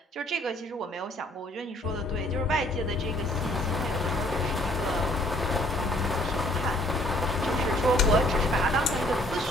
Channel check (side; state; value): both; normal; correlation 0.61